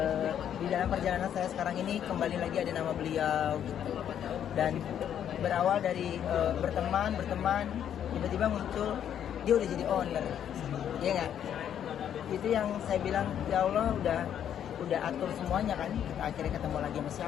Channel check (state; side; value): quieter; right; 9.6 dB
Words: di dalam perjalanan saya sekarang ini kembali lagi ada nama beliau gitu. Dan berawal dari berteman tiba-tiba muncul dia udah jadi owner. Iya nggak? Itu yang saya bilang, ya Allah udah atur semuanya kan. Kita akhirnya ketemu lagi sama